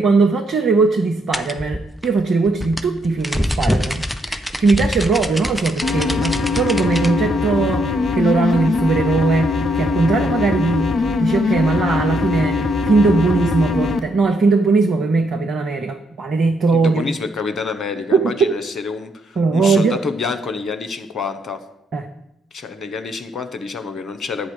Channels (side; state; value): both; normal; correlation 0.75